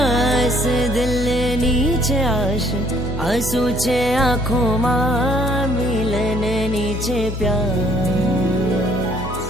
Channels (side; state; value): both; normal; correlation 0.62